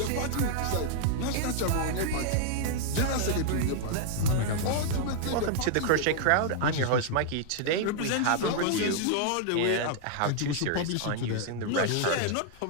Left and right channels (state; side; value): different; both; correlation -0.01